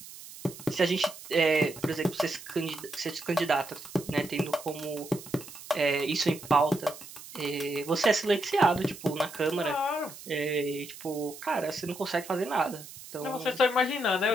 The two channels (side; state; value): right; noise; hiss, 15 dB below the sound